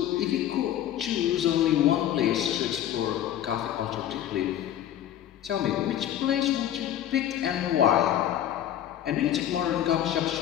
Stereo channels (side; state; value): right; quieter; 11.3 dB